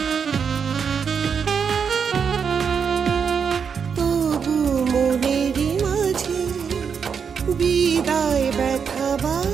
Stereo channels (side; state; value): left; quieter; 6.6 dB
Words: তবু মনের মাঝে বিদায় ব্যথা